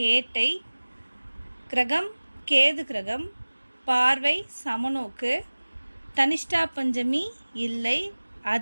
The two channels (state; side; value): inverted; both; correlation -1.00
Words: கிரகம் கேது கிரகம், பார்வை சமநோக்கு, தனிஷ்டா பஞ்சமி இல்லை,